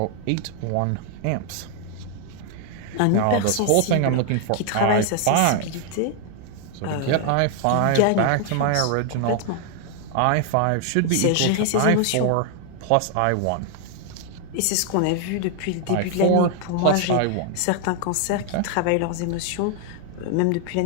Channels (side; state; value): both; different; correlation 0.00